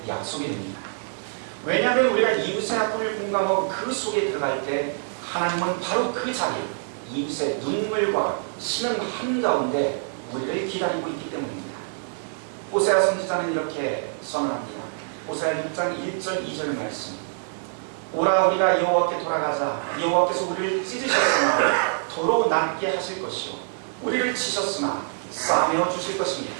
약속이 됩니다. 왜냐하면 우리가 이웃의 아픔을 공감하고 그 속에 들어갈 때 하나님은 바로 그 자리, 이웃의 눈물과 신음 한가운데 우리를 기다리고 있기 때문입니다. 호세아 선지자는 이렇게 선언합니다. 호세아 6장 1절 2절 말씀. 오라 우리가 여호와께 돌아가자. 여호와께서 우리를 찢으셨으나 도로 낫게 하실 것이요 우리를 치셨으나 싸매어 주실 것입니다.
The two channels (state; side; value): silent; left; digital silence